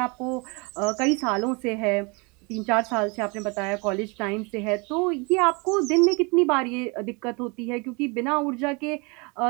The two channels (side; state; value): left; quieter; 29.7 dB